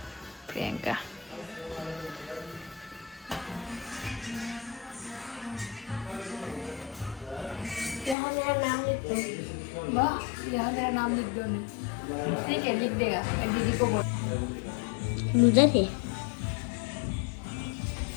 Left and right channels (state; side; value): drops out; right; at 8.2 s